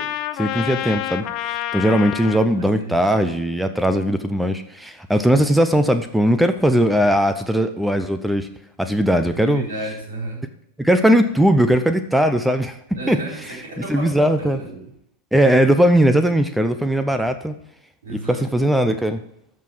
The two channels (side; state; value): both; normal; correlation 0.80